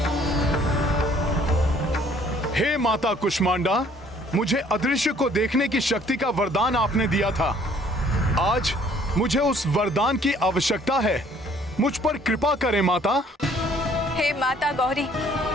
हे माता कुष्मांडा, मुझे अदृश्य को देखने की शक्ति का वरदान आपने दिया था। आज मुझे उस वरदान की आवश्यकता है। मुझ पर कृपा करें माता। हे माता गौरी,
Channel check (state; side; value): normal; both; correlation 0.59